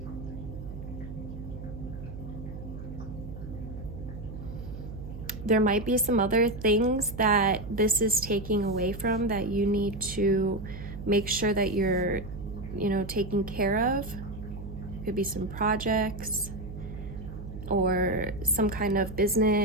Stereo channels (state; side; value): noise; right; hum, 10 dB below the sound